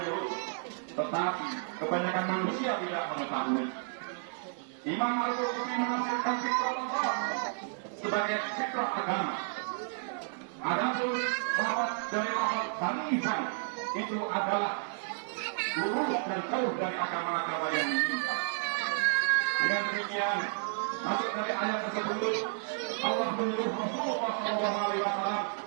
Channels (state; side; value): silent; left; digital silence